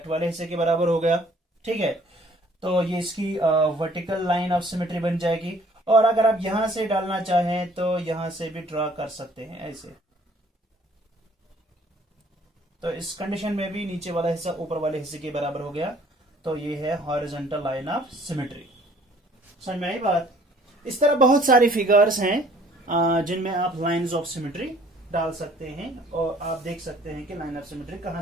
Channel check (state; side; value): normal; both; correlation 0.57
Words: वाले हिस्से के बराबर हो गया, ठीक है, तो ये इसकी वर्टिकल लाइन ऑफ सिमेट्री बन जाएगी। और अगर आप यहां से डालना चाहें तो यहां से भी ड्रॉ कर सकते हैं ऐसे। तो इस कंडीशन में भी नीचे वाला हिस्सा ऊपर वाले हिस्से के बराबर हो गया, तो ये है हॉरिजॉन्टल लाइन ऑफ सिमेट्री। समझ में आई बात? इस तरह बहुत सारी फिगर्स हैं जिनमें आप लाइंस ऑफ सिमेट्री डाल सकते हैं और आप देख सकते हैं कि लाइन ऑफ सिमेट्री कहां